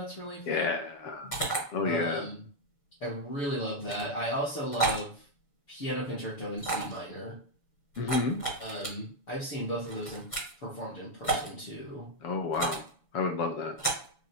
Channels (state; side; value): late; right; 7.0 ms